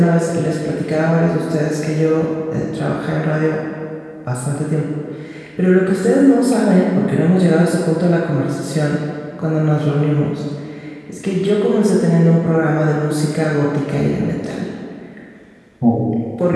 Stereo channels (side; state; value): both; identical; correlation 1.00